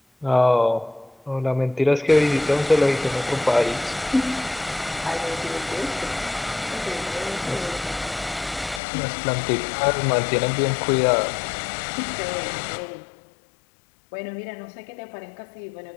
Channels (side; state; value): right; drops out; at 8.8 s